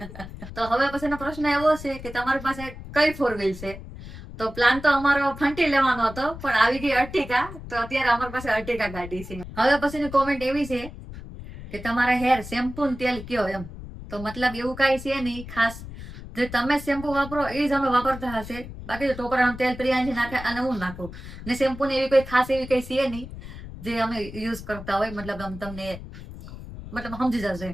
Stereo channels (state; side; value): noise; left; rumble, 12 dB below the sound